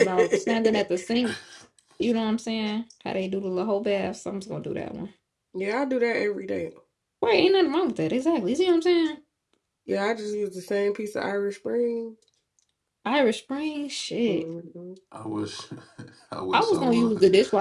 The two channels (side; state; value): both; identical; correlation 1.00